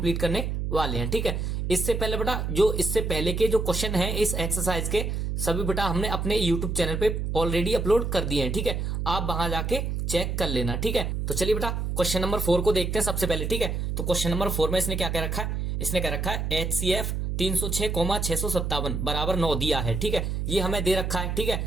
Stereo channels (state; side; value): noise; right; hum, 1 dB below the sound